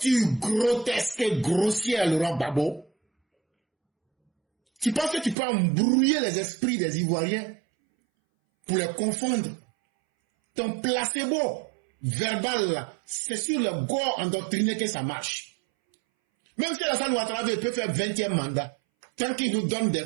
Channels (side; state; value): left; drops out; at 5.4 s